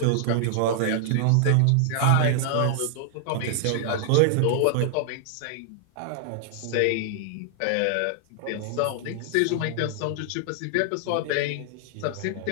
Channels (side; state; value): both; different; correlation 0.00